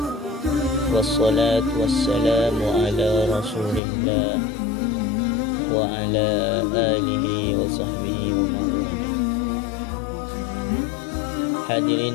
wassalatu wassalamu ala rasulillah wa ala alihi wa sahbihi wa mawala.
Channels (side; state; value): right; drops out; at 3.8 s